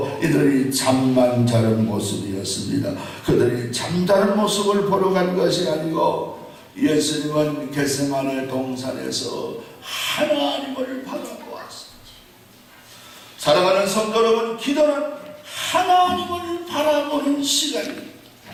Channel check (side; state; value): both; identical; correlation 1.00